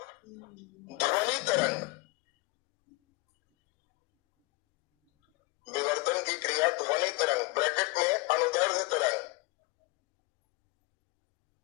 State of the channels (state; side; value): quieter; right; 25.5 dB